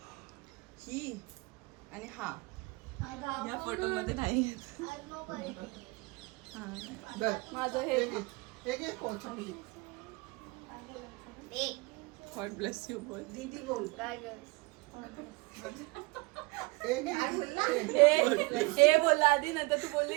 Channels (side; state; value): left; quieter; 25.4 dB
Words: ही आणि हा या फोटो मध्ये नाही येत. हा, नाही. धर. माझं हे एक एक कोण चांगली. गॉड ब्लेस यू बोल. दीदी बोल. एक एक हे बोलला आधी नंतर तू